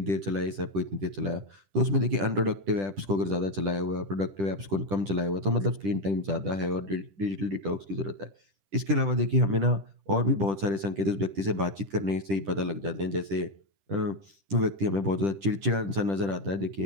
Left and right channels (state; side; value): late; left; 10 ms